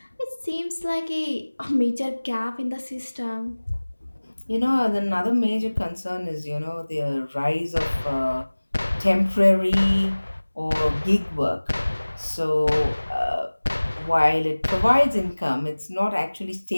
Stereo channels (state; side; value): inverted; both; correlation -1.00